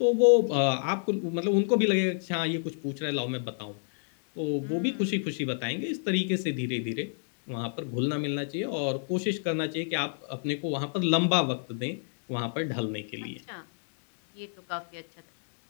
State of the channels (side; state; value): right; silent; digital silence